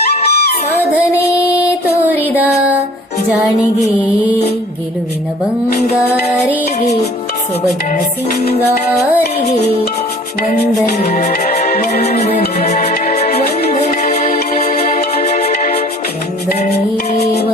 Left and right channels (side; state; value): both; normal; correlation 0.50